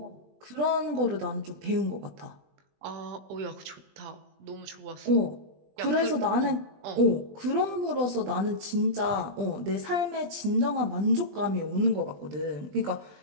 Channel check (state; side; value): late; left; 20 ms